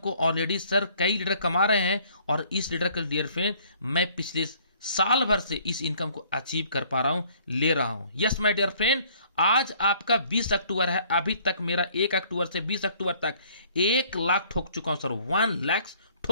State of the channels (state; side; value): inverted; both; correlation -0.59